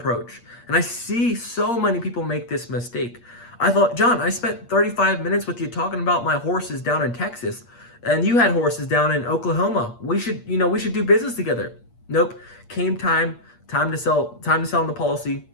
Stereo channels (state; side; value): late; right; 8.5 ms